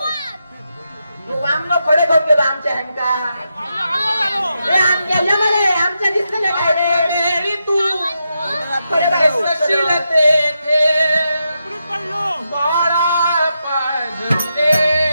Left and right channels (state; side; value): inverted; both; correlation -0.85